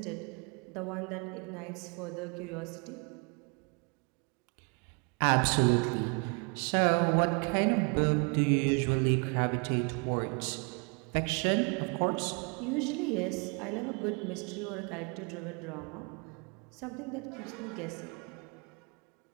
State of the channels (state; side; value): quieter; left; 34.0 dB